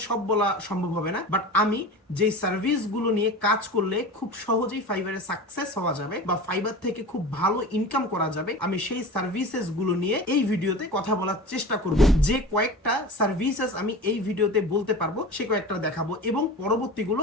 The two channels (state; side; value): normal; both; correlation 0.33